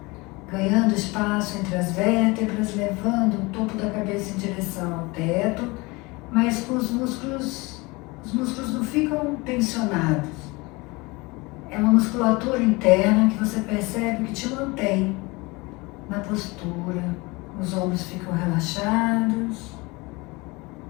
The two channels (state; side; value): quieter; right; 24.6 dB